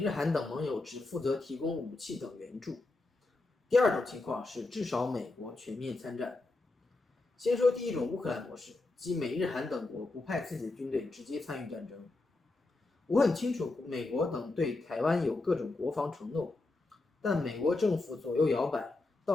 韩等盟友只负责提供武器等援助。第二种情况是至少美国全面参战。先说第一种乌克兰模式，即美日韩等国不派自己的军队直接参与战争。我很清楚美国等对台湾有各种国防承诺，但美国政府左右摇摆，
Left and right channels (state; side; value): quieter; right; 3.2 dB